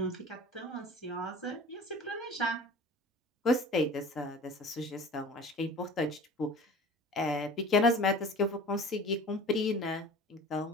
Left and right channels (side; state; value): both; normal; correlation 0.41